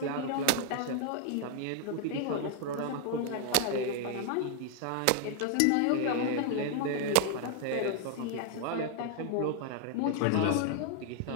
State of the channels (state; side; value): different; both; correlation 0.00